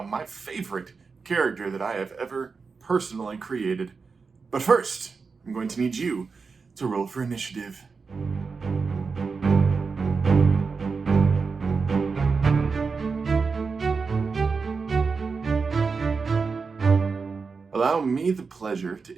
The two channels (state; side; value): quieter; left; 4.9 dB